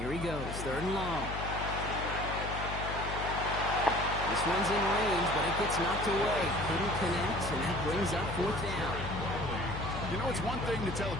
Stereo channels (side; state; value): left; noise; hum, 6 dB below the sound